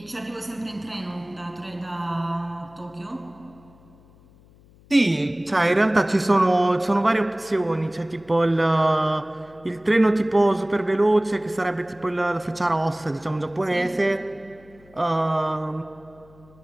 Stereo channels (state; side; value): noise; left; hum, 27 dB below the sound